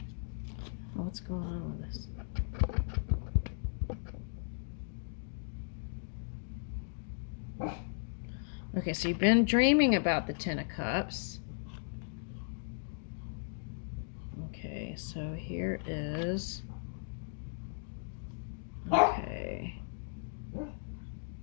Oh, what's going on with this? Okay, so you've been dreaming about the 10 of Cups. Okay, so here is... Okay.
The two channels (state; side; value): silent; right; digital silence